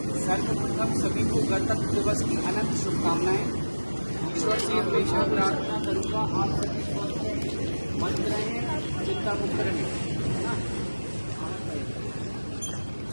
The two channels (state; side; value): inverted; both; correlation -1.00